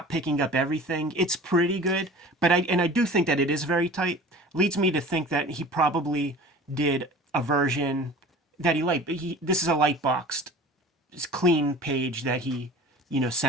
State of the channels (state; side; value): normal; both; correlation 0.41